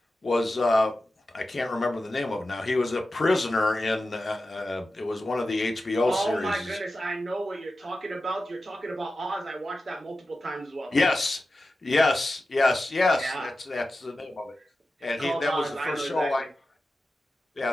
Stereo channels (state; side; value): normal; both; correlation 0.93